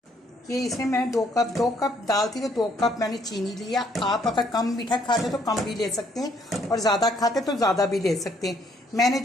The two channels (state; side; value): normal; both; correlation 0.67